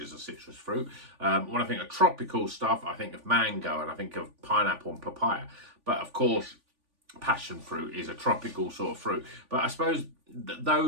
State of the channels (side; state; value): left; late; 3.4 ms